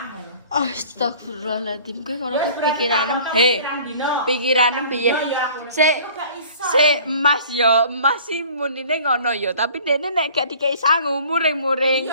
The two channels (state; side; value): inverted; both; correlation -0.48